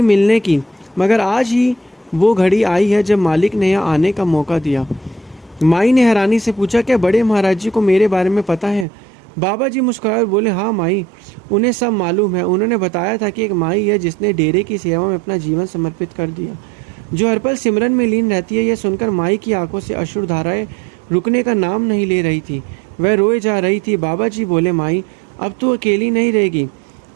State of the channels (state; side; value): drops out; left; at 8.8 s